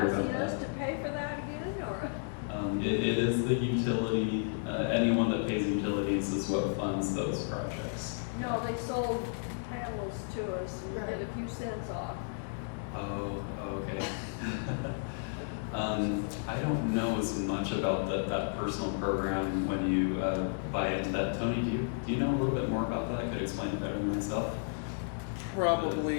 about asking us that? to pay for that again, or? It is the utility, anyone that pays utilities is what funds those projects. No, they sold panels to us and we get a few cents off. Oh, okay. I don't know as much about that personal program when you buy into that. Tony, do you know a little bit more about that? I could explain it better than myself.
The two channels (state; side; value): silent; right; 56 dB below the other